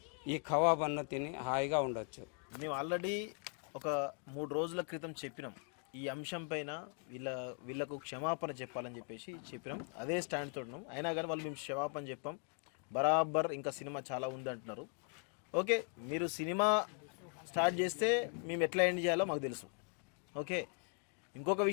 ఈ ఖవ్వా బన్ను తిని హాయిగా ఉండొచ్చు. మేము ఆల్రెడీ ఒక 3 రోజుల క్రితం చెప్పినాం ఈ అంశం పైన. వీళ్ళకు క్షమాపణ చెప్పాలని చెప్పినాం. అదే స్టాండ్ తోడున్నాం. అయినా కానీ వాళ్ళు మేము క్షమాపణ చెప్పాం బరాబర్. ఇంకా సినిమా చాలా ఉంది అంటున్నారు. ఓకే, మీరు సినిమా స్టార్ట్ చేస్తే మేము ఎట్లా ఎండ్ చేయాలో మాకు తెలుసు. ఓకే, ఇంకొక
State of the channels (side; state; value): right; quieter; 39.7 dB